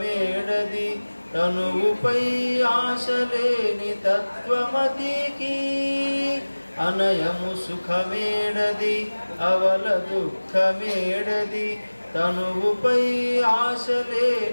తనువుపై ఆశలేని తత్వమతికి అనయము సుఖమేడది అవల దుఃఖమేడది తనువుపై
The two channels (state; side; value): inverted; both; correlation -1.00